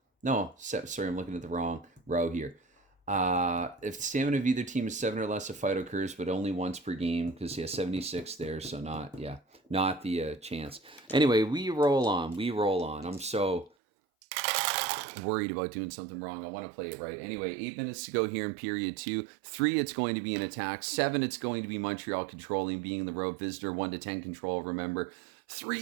No, sorry, I'm looking at the wrong row here. If the stamina of either team is 7 or less, a fight occurs, but only once per game, because 76 there, so not the chance. Anyway, we roll on. I'm so worried about doing something wrong. I want to play it right. Anyway, 8 minutes to go here in period 2. 3, it's going to be an attack. 7, it's going to be Montreal controlling, being the road visitor. 1 to 10 control, remember.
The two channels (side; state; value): left; drops out; at 13.7 s